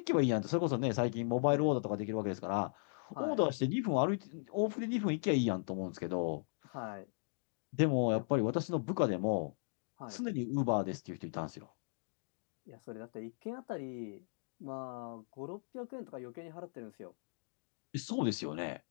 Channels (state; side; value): silent; right; digital silence